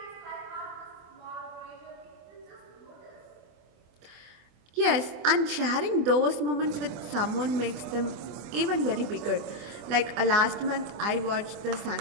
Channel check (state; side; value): late; left; 24 ms